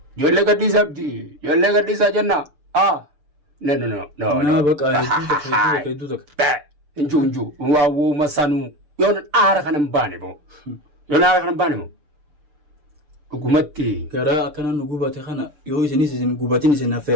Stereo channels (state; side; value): late; left; 6.8 ms